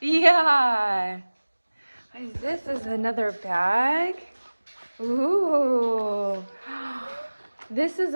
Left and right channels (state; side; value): inverted; both; correlation -1.00